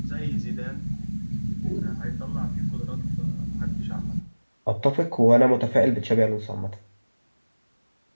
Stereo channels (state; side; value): inverted; both; correlation -1.00